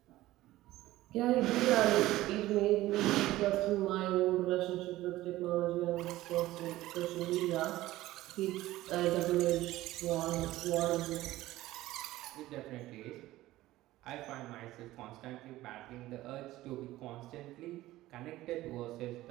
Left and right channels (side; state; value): left; quieter; 16.5 dB